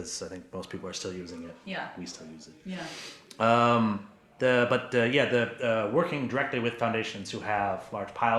I think most people are still using it. Yeah. We still use it. Yeah. Working directly with foundations who have large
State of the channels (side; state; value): both; identical; correlation 1.00